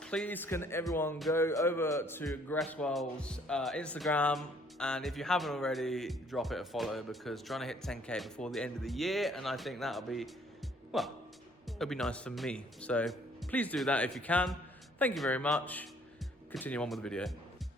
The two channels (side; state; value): both; normal; correlation 0.62